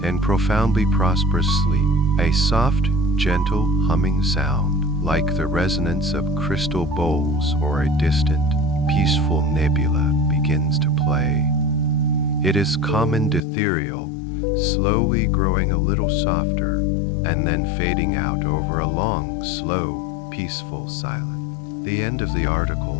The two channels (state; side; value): drops out; right; at 13.4 s